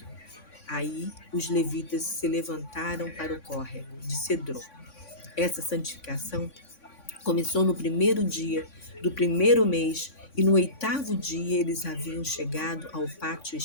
Aí os levitas se levantaram para o córrego de Cedron. Essa santificação começou no primeiro dia do primeiro mês e no 8º dia eles haviam chegado ao pátio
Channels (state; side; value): late; right; 3.6 ms